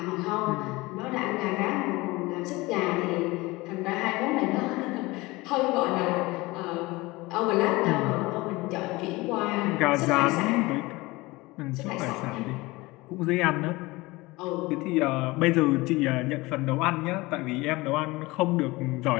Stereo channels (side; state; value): right; quieter; 21.8 dB